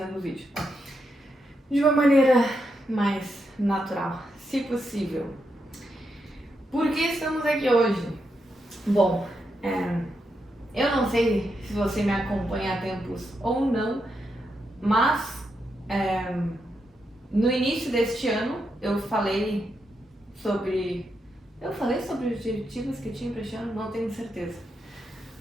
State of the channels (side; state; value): both; normal; correlation 0.83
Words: o vídeo de uma maneira mais natural, se possível. Por que estamos aqui hoje? Bom, eu não sei se você me acompanha há tempos ou não, mas no início deste ano eu falei sobre. Eu falei sobre os objetivos que eu tinha para este ano? Não tenho certeza.